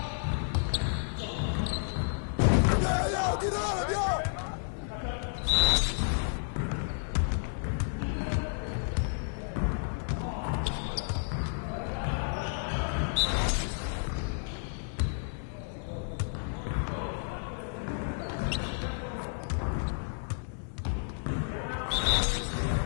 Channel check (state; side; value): silent; right; digital silence